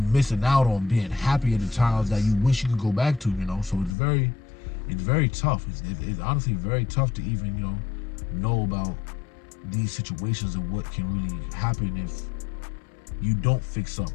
missing out on being happy at the times that you wish you could go back to, you know. So it's very it's very tough. It's honestly very tough to even know about these situations and what can really happen if you don't fix up,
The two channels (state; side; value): drops out; right; at 4.0 s